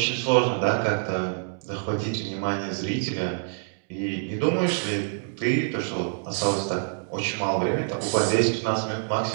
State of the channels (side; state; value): left; silent; digital silence